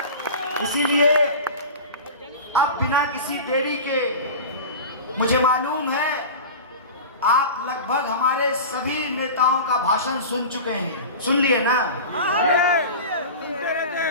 इसीलिए अब बिना किसी देरी के, मुझे मालूम है आप लगभग हमारे सभी नेताओं का भाषण सुन चुके हैं, सुन लिए ना,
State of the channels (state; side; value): inverted; both; correlation -0.32